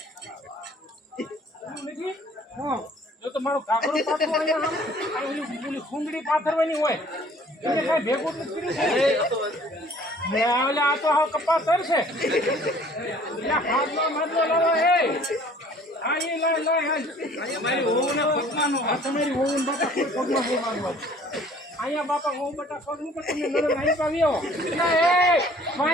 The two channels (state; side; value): normal; both; correlation 0.54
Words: જો તો મારો કાકરો પાથરો સુંદડી પાથરવાની હોય એને કઈ ભેગું નથી કર્યું આ તો હાવ કપાસ છે હાથમાં માથલો લાવો હે હા એ મારી હોવું ને પગમાં તમારી હોવું ને બાપા કોઈ પગમાં બહુ માનવા અહીંયા બાપા હોવું બટા પગ નું પણ તમે નજર આવી પાવ્યો એ